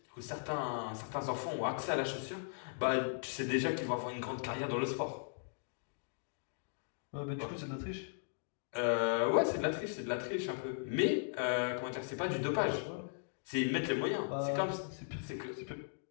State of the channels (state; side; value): silent; right; digital silence